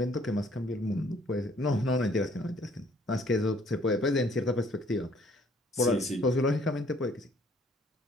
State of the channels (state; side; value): normal; both; correlation 0.61